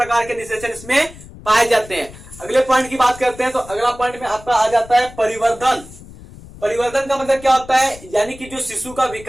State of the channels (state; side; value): noise; left; rumble, 18 dB below the sound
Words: के निषेचन इसमें पाए जाते हैं। अगले पॉइंट की बात करते हैं तो अगला पॉइंट में आपका आ जाता है परिवर्धन। परिवर्धन का मतलब क्या होता है, यानी कि जो शिशु का